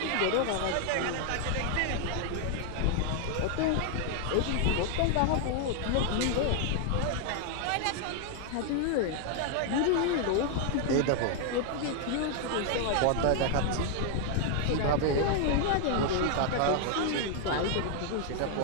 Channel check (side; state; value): both; different; correlation 0.00